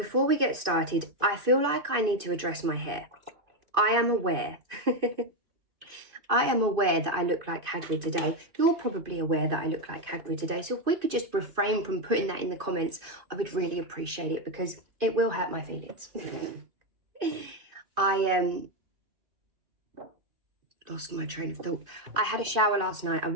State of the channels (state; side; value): late; left; 2.5 ms